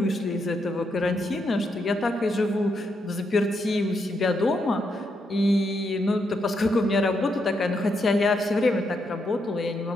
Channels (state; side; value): normal; both; correlation 0.80